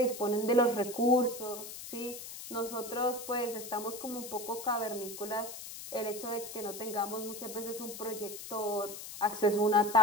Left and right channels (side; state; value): left; noise; hiss, 10 dB below the sound